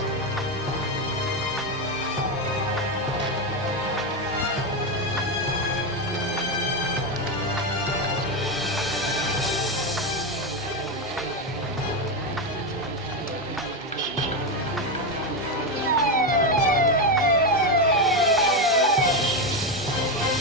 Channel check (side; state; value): both; normal; correlation 0.10